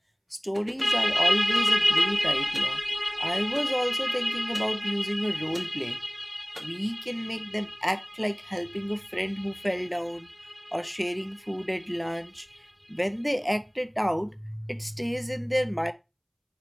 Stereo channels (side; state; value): both; identical; correlation 1.00